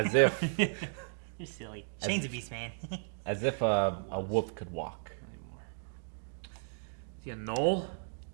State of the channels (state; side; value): silent; left; digital silence